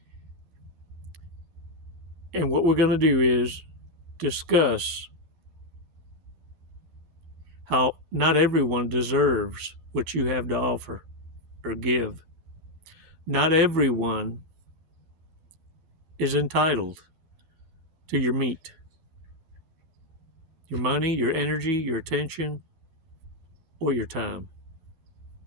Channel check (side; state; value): left; late; 11 ms